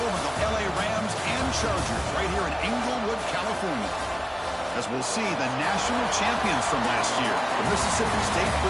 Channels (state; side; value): identical; both; correlation 1.00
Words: of the LA Rams and Chargers, right here in Inglewood, California. As we'll see the national champions from last year, the Mississippi State